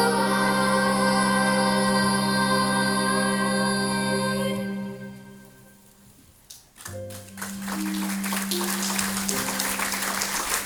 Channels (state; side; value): identical; both; correlation 1.00